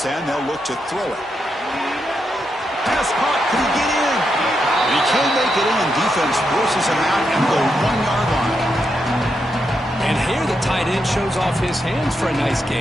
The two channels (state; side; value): normal; both; correlation 0.83